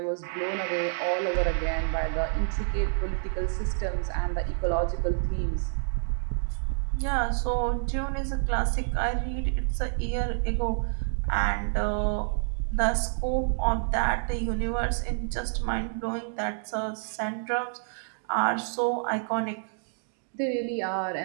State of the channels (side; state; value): left; silent; digital silence